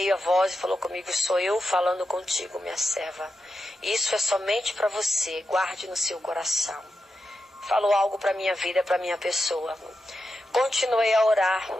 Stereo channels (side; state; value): both; normal; correlation 0.88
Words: a voz e falou comigo, sou eu falando contigo, minha serva. Isso é somente para você, guarde no seu coração. Falou algo para minha vida, para minha pessoa. Continuei a orar